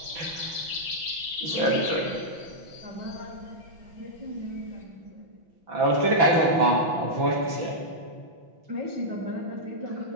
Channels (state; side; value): late; left; 5.9 ms